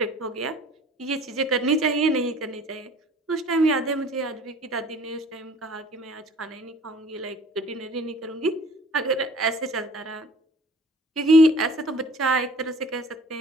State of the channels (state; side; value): normal; both; correlation 0.50